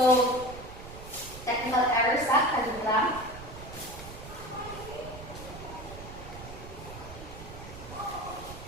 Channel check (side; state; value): right; noise; rumble, 13 dB below the sound